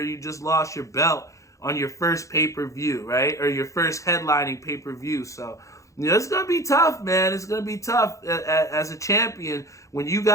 you just lost your belt on your first pay-per-view, right? Or your first headlining pay-per-view. So, it's going to be tough, man. It's going to be tough as a champion. When you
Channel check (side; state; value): right; late; 0.15 ms